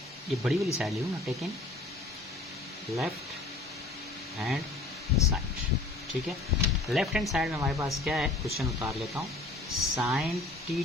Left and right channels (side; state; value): right; quieter; 3.0 dB